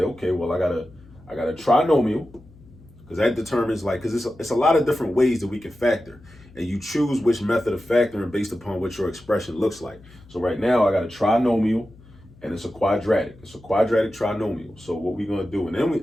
okay, well, I got a trinomial, because that determines, like, because it's a lot of different ways that we can factor, and you choose which method of factoring based upon what your expression looks like. So right now I got a trinomial, and it's a quadratic. It's a quadratic trinomial. So what we're going to do,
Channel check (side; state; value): left; noise; hum, 24 dB below the sound